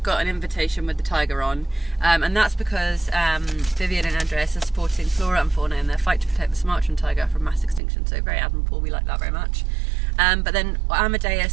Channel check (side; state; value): left; drops out; at 7.8 s